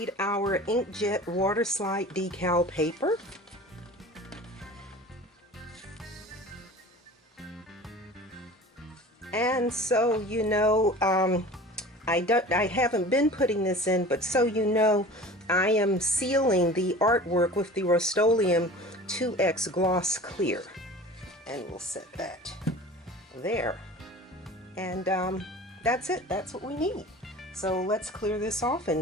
our inkjet water slide decal paper. And so you know, I haven't been putting this in, but so you know, I am sealing the artwork with the Rust-Oleum 2X Gloss Clear. And we'll set that there. And that's it. That's what we need. So let's clear this off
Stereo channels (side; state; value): both; normal; correlation 0.40